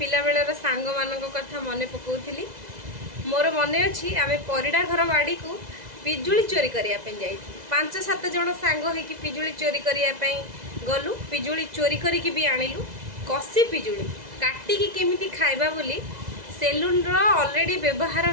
बेलर सांग मान कथा मन पकाउली। मोर मन अच्छी आम परिडा घर बाड़ी को पिजुली चोरी करने जाई 5-7 जन सांग होइकी पिजुली चोरी करने गलु। पिजुली चोरी करिकी भी आनिलु। कसी पिजुली काटिकी केमिति खाइबा बोली सेलून रो ऑलरेडी व्यवहार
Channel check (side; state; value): left; late; 2.0 ms